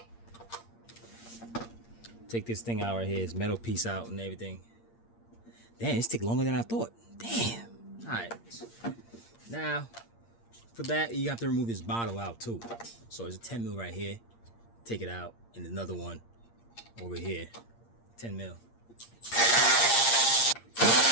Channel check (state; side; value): late; right; 8.6 ms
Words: take this thing out right here. This metal piece out and everything. Damn, this take longer than I thought. Damn. Alright. Now, for that, you have to remove this bottle out too. So there's a 10 mil right here. Take it out, and another one over here. 10 mil.